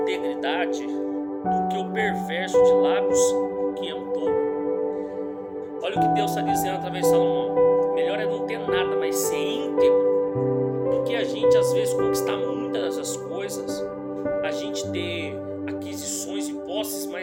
do que o perverso de lábios que é um tolo. Olha o que Deus está dizendo através de Salomão. Melhor é não ter nada, mas ser íntegro, do que a gente às vezes conquistar muitas dessas coisas, a gente ter aquisições e posses,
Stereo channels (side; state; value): both; identical; correlation 1.00